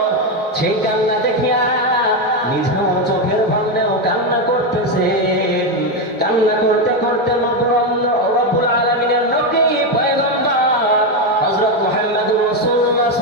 সেই কান্না দেখিয়া নিজেও চোখের ভাঙলেও কান্না করতেছে। কান্না করতে করতে রব্বুল আলামিনের নবী পয়গম্বর হযরত মুহাম্মদুর রাসূলুল্লাহ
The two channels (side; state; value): both; normal; correlation 0.08